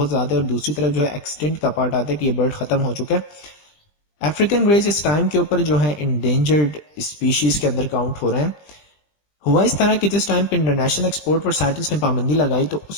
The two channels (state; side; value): late; right; 20 ms